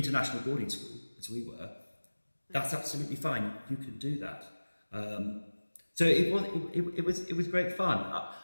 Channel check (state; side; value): inverted; both; correlation -1.00